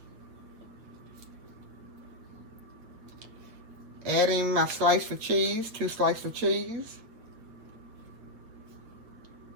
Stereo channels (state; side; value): late; left; 8.8 ms